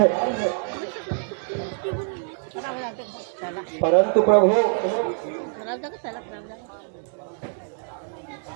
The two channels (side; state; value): left; silent; 56 dB below the other